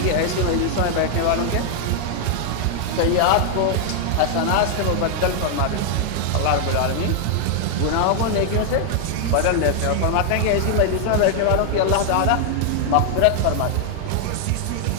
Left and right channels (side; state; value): both; different; correlation 0.00